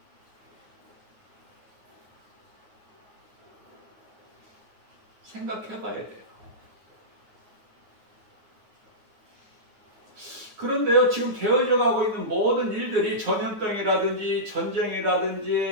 생각해 봐야 돼요. 그런데요, 지금 되어져 가고 있는 모든 일들이 전염병이라든지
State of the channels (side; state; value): left; late; 9.5 ms